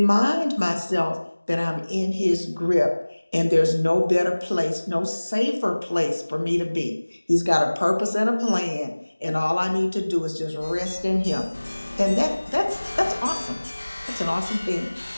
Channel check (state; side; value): inverted; both; correlation -1.00